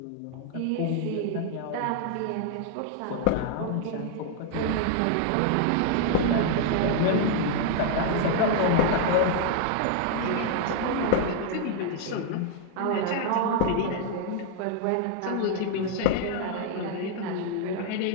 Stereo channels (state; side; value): different; both; correlation 0.00